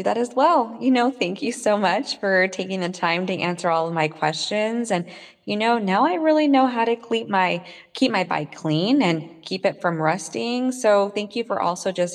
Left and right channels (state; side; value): identical; both; correlation 1.00